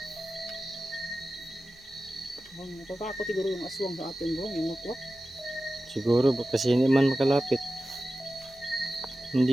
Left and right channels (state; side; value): normal; both; correlation 0.94